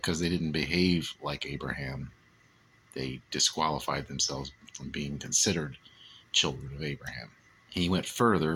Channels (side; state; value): both; identical; correlation 1.00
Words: they didn't behave like Abraham, they disqualified themselves from being considered children of Abraham. And he went